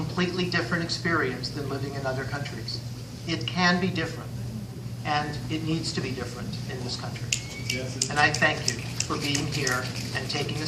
different experience than living in other countries. It can be different, and it needs to be different in this country. And I thank you for being here and taking a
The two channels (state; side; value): identical; both; correlation 1.00